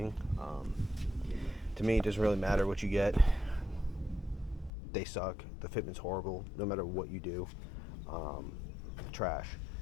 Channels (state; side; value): drops out; right; at 4.7 s